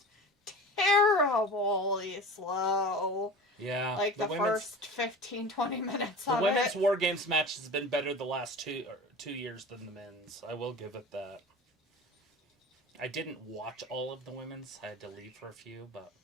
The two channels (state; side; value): normal; both; correlation 0.35